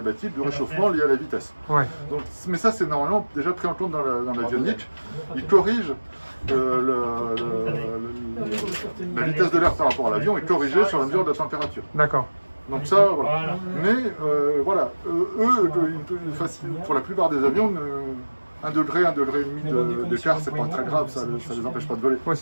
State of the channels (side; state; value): both; inverted; correlation -1.00